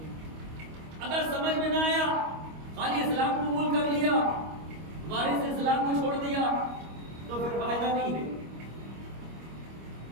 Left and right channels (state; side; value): late; left; 25 ms